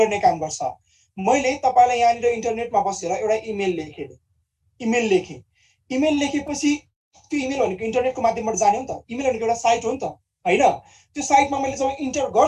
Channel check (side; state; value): both; identical; correlation 1.00